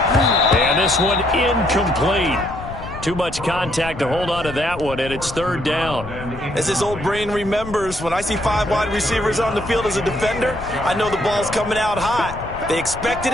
And this one incomplete. Too much contact to hold on to that one, and it's 3rd down. As his old brain remembers, when I see 5 wide receivers on the field as a defender, I know the ball's coming out hot. They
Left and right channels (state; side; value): noise; left; rumble, 12 dB below the sound